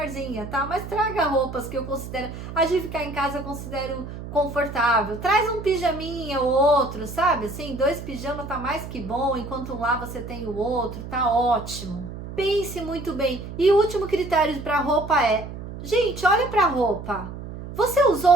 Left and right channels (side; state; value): right; noise; hum, 10 dB below the sound